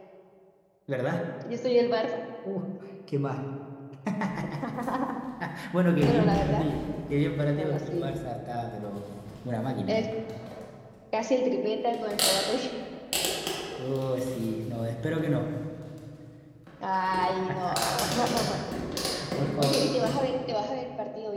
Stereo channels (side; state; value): both; identical; correlation 1.00